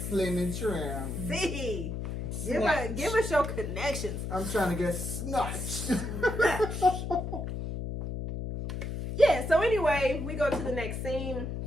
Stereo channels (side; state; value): left; noise; hum, 4 dB below the sound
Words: and trim. See. Give us your connections. I'm trying to get snatched. Yeah, so anyway, we go to the next scene.